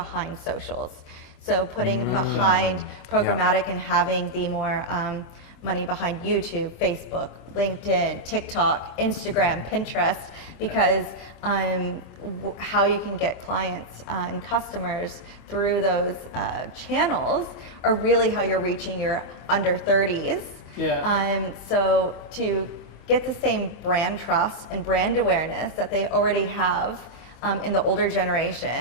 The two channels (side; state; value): right; late; 25 ms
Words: socials. So putting behind programmatic and having the more money behind YouTube, Facebook, LinkedIn, TikTok, Instagram, Pinterest, because how you can get clients and customers through those channels are really how you're reaching your under 30s. Yeah. So to get the same brand trust and brand awareness that they already have in the older